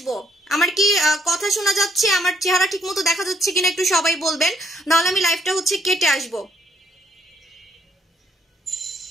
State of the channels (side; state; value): both; normal; correlation 0.70